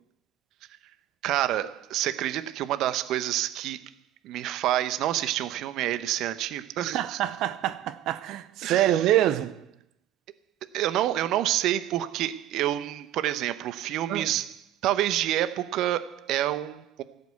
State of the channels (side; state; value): left; quieter; 12.6 dB